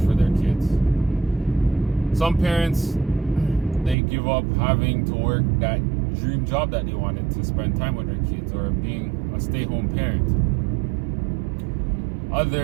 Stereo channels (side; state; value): left; drops out; at 4.0 s